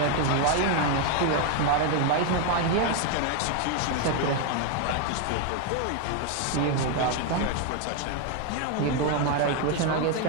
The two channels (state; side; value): different; both; correlation 0.01